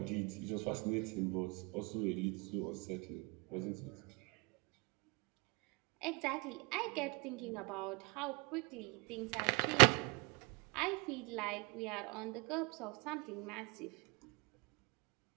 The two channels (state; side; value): quieter; left; 29.7 dB